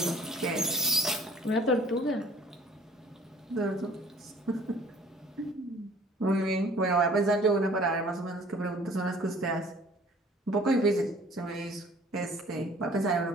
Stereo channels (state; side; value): normal; both; correlation 0.52